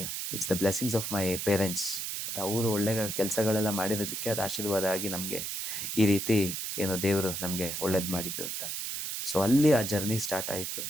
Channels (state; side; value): noise; right; hiss, 4 dB below the sound